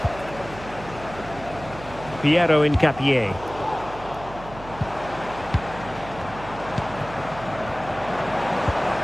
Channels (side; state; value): right; noise; hum, 15 dB below the sound